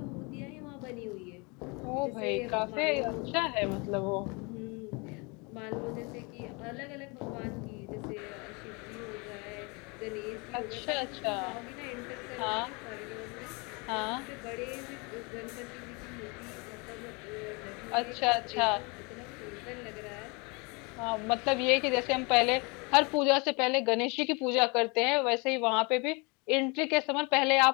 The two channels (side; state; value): right; quieter; 29.6 dB